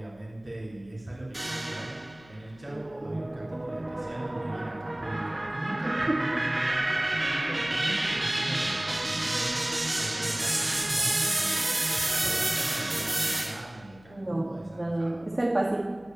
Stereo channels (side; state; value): left; noise; hum, 25 dB below the sound